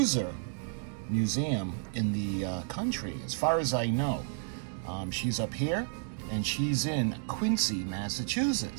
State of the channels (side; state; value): left; silent; digital silence